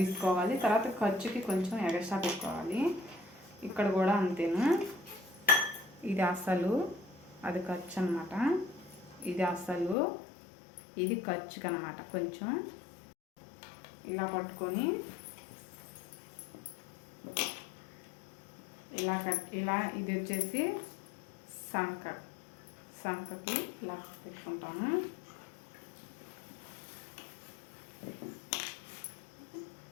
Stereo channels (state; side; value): drops out; right; at 10.0 s